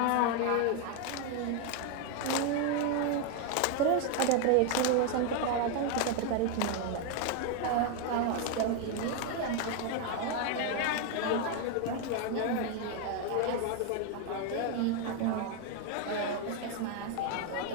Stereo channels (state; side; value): different; both; correlation 0.01